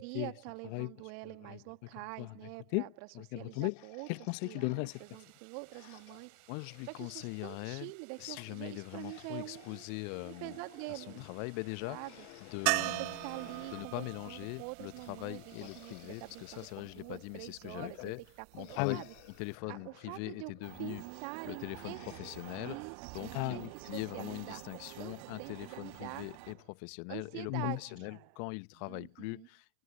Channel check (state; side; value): different; both; correlation 0.00